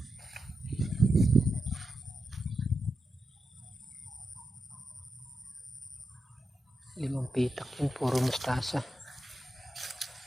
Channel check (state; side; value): normal; both; correlation 0.88